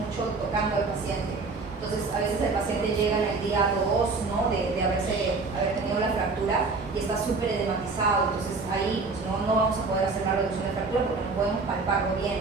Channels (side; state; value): left; quieter; 4.0 dB